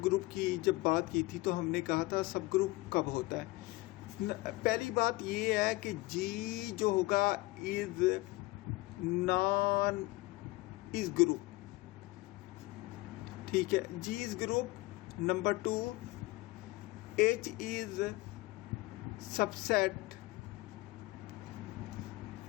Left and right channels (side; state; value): right; quieter; 20.5 dB